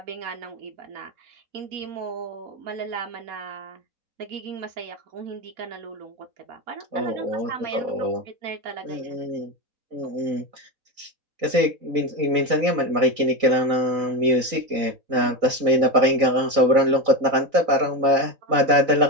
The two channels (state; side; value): late; left; 4.0 ms